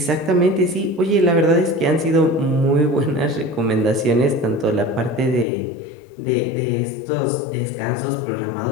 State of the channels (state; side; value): drops out; right; at 5.5 s